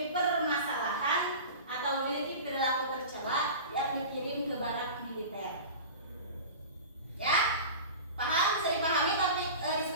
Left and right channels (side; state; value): both; inverted; correlation -0.34